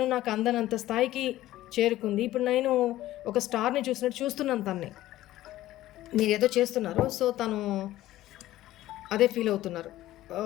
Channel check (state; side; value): quieter; right; 15.0 dB